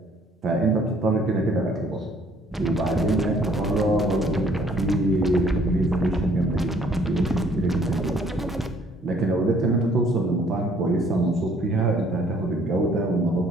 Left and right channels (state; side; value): normal; both; correlation 0.61